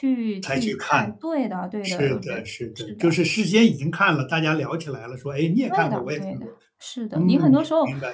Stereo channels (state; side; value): identical; both; correlation 1.00